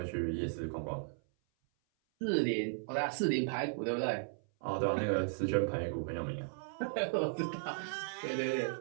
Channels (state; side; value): silent; left; 54 dB below the other